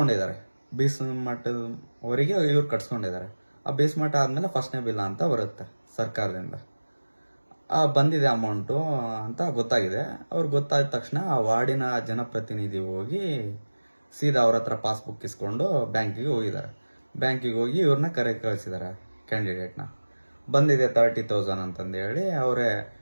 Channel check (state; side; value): inverted; both; correlation -1.00